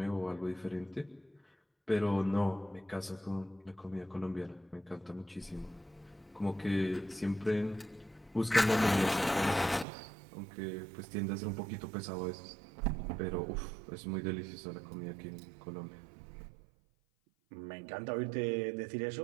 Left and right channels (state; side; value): drops out; left; at 9.9 s